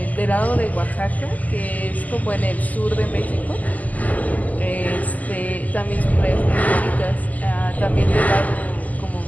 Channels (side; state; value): right; late; 0.078 ms